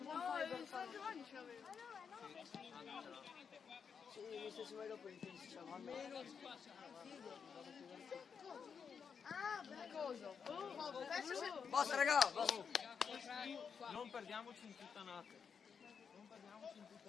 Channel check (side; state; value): right; quieter; 6.4 dB